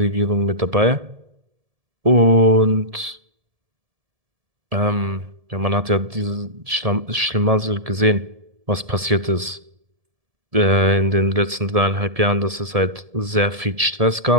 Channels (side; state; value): left; late; 1.7 ms